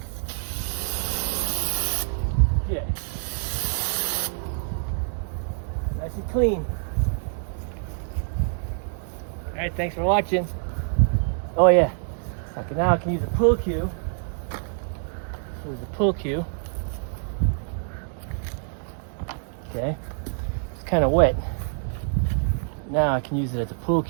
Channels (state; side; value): silent; left; digital silence